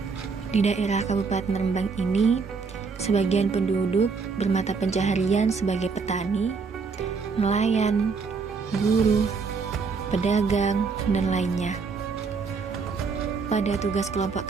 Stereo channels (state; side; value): quieter; left; 5.0 dB